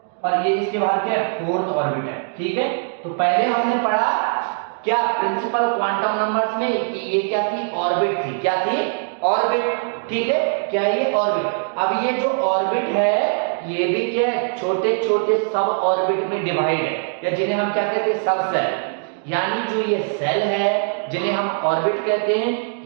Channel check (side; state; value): left; silent; digital silence